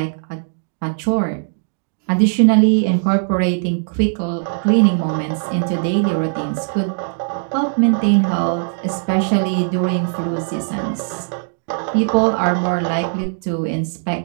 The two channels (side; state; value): left; silent; 67 dB below the other